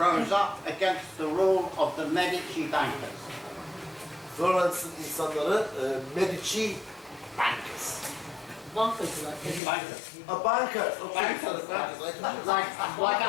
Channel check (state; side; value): drops out; right; at 9.6 s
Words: up against the rule of the Medici bankers. Florence'ın insanları Medici bankers. Bankacılar. Bankers. Bankers. Okay. Bankers, Bankers. like